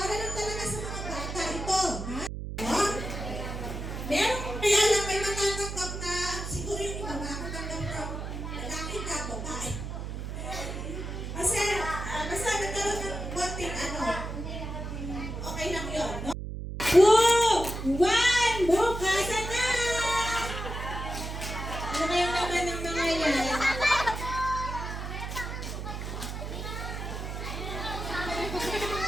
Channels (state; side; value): noise; right; hum, 6 dB below the sound